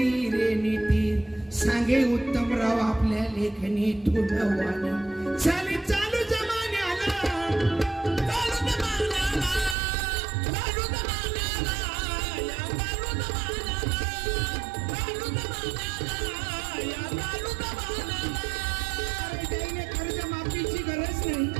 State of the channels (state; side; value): drops out; left; at 9.8 s